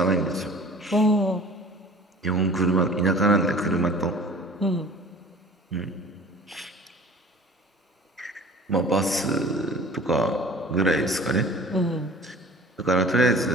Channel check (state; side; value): normal; both; correlation 0.45